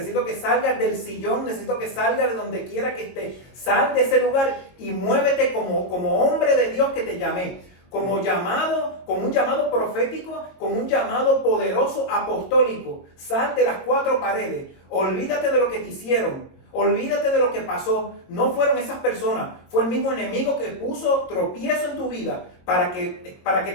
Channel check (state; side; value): late; right; 22 ms